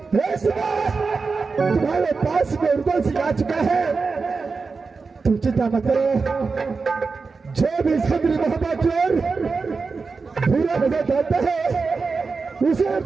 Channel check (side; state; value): left; quieter; 4.5 dB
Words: तुम्हारे पास में उर्दू सिखा चुका है, तुम चिंता मत करो। जो भी सदरी मोहब्बत की ओर बुरा नजर डालता है उसे